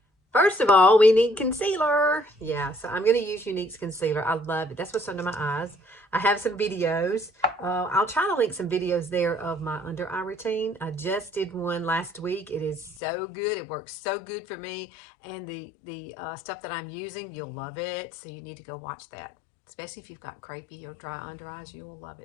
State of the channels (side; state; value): right; drops out; at 13.0 s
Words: First of all, we need concealer. Yeah, so I'm going to use Younique's concealer. I love it. That's what's under my eyes. I have some videos. I'll try to link some videos there of my under eye routine. I just did one last week. It is so good. It works so good for me. And the stuff that I'm using, you'll love it. So you need to go watch that. Especially if you've got crepey or dry under eyes, you'll love